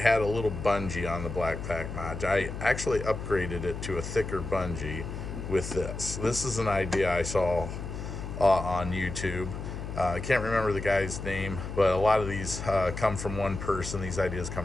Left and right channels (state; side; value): noise; left; hum, 7 dB below the sound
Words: a little bungee on the BlackPak mod. I actually upgraded it to a thicker bungee with this. This is an idea I saw on YouTube. I can't remember the guy's name, but a lot of these come from one person. These ideas